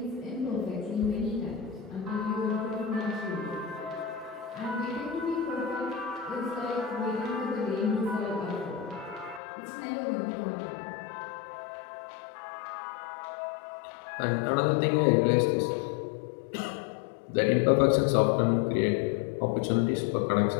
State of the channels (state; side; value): drops out; right; at 9.4 s